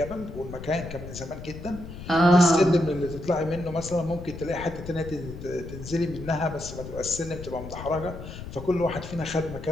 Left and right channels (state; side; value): noise; left; rumble, 11 dB below the sound